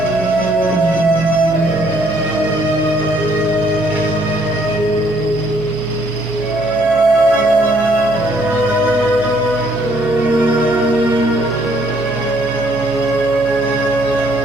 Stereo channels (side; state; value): right; noise; hum, 17 dB below the sound